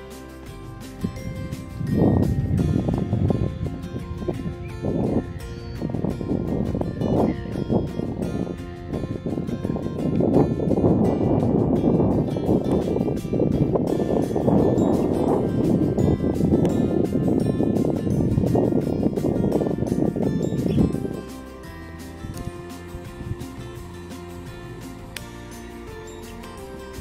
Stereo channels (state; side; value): identical; both; correlation 1.00